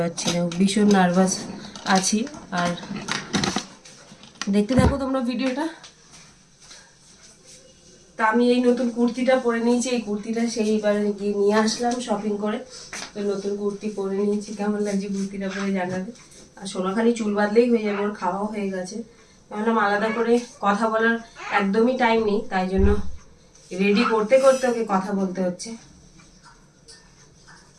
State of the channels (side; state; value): both; identical; correlation 1.00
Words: না, ভীষণ নার্ভাস আছি। আর দেখতে থাকো তোমরা ভিডিওটা। তা আমি এই নতুন কুর্তিটা পরে নিয়েছি। এই কুর্তিটা সেইবার গিয়ে নিয়ে আসলাম শপিং করে। তো নতুন কুর্তি পরে নিয়েছি, কেমন লাগছে কুর্তিটা পরে জানাবে। আর সোনা খালি চুল বাঁধলেই হয়ে যাবে, ওর খাওয়াও হয়ে গেছে। ভাবলাম আলাদা করে কথা বলার একদমই টাইম নেই, তাই জন্য রেডি করতে করতে ওকে কথা বলতে হচ্ছে।